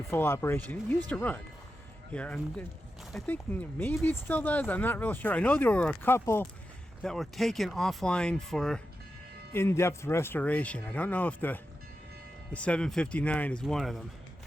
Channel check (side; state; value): both; normal; correlation 0.90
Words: full operation. It used to run here, and I think maybe it still does. I'm not real sure. I know there were a couple that were taken offline for in-depth restoration. I don't know if the 759 is one of them.